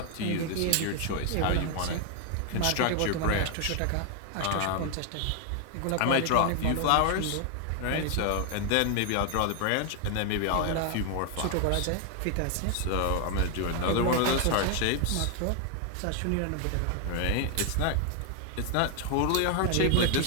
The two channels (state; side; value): different; both; correlation 0.00